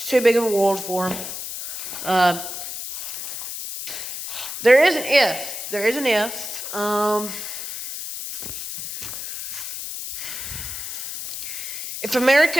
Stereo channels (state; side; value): noise; left; hiss, 7 dB below the sound